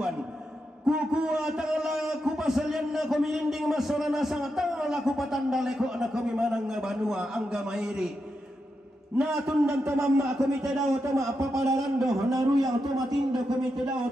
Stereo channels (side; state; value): both; normal; correlation 0.86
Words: kukua tangala kupasalian na kumilinding masora nasang tangala kupatandaleko na kumimanang nga banua angga mairi natundan tamama kumite daw tama papadarando naruyang tumatindo kumite daw